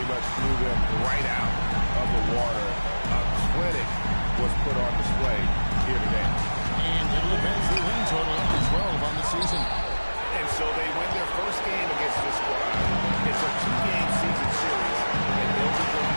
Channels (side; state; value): both; inverted; correlation -1.00